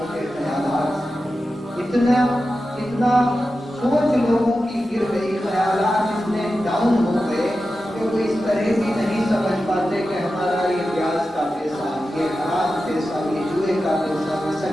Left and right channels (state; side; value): normal; both; correlation 0.92